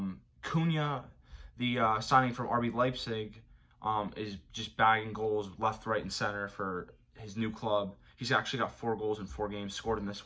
Cunha, the signing from RB Leipzig, is just bagging goals left, right, and center for his new club. He's actually got 4 goals in 4 games, scored in this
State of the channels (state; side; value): identical; both; correlation 1.00